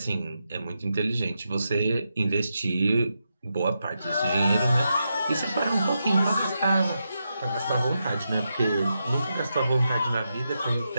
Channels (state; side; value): inverted; both; correlation -0.86